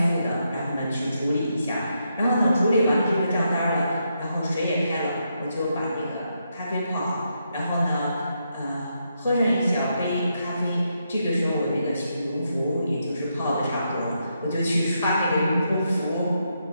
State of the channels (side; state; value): both; inverted; correlation -0.81